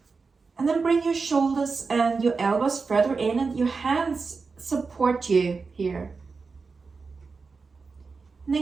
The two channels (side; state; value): left; quieter; 4.6 dB